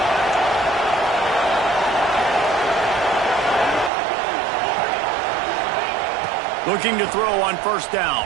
Looking to throw on first down.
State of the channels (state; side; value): drops out; left; at 3.9 s